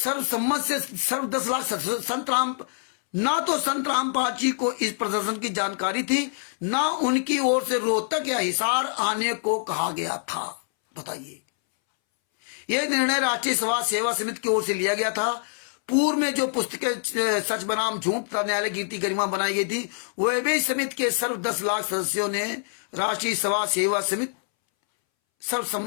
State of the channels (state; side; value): silent; right; 62 dB below the other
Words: से सर्व 10 लाख संत राम, ना तो संत रामपाल जी को इस प्रदर्शन की जानकारी थी, ना उनकी ओर से रोहतक या हिसार आने को कहा गया था। बताइए, यह निर्णय राष्ट्रीय सभा सेवा समिति की ओर से लिया गया था। पूर्व में जो पुस्तकें सच बनाम झूठ तथा न्यायालय कीर्ति गरिमा बनाई गई थी, वह भी समिति के सर्व 10 लाख सदस्यों ने राष्ट्रीय सभा सेवा समिति